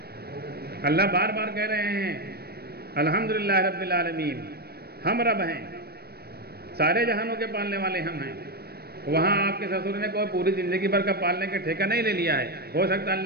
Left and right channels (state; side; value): late; left; 0.46 ms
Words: اللہ بار بار کہہ رہے ہیں الحمدللہ رب العالمین، ہم رب ہیں، سارے جہانوں کے پالنے والے ہم ہیں. وہاں آپ کے سسر نے کوئی پوری زندگی بھر کا پالنے کے ٹھیکہ نہیں لے لیا ہے. ہو سکتا ہے